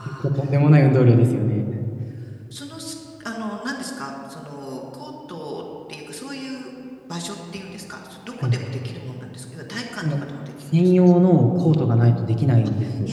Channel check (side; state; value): both; identical; correlation 1.00